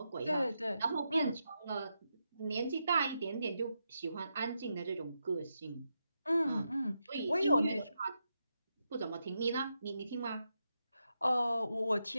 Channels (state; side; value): inverted; both; correlation -0.85